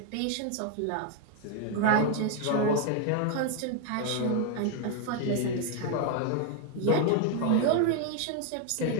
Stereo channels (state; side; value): different; both; correlation 0.01